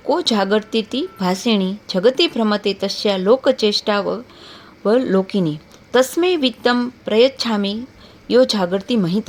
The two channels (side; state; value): both; identical; correlation 1.00